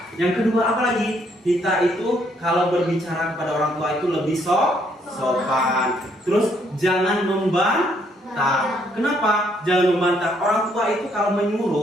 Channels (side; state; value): both; normal; correlation 0.69